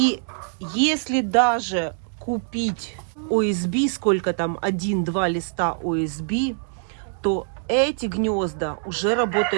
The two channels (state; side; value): silent; left; digital silence